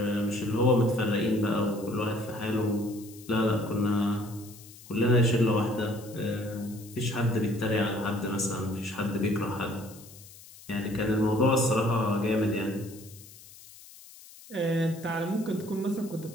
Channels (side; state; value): left; noise; hiss, 20 dB below the sound